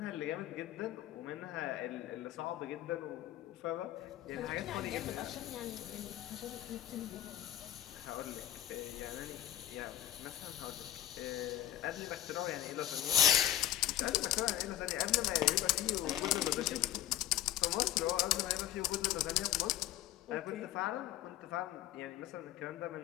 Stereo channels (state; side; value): quieter; right; 12.6 dB